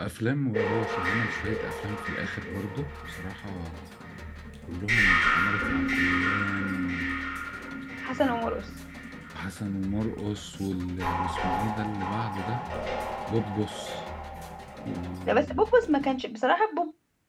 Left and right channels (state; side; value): identical; both; correlation 1.00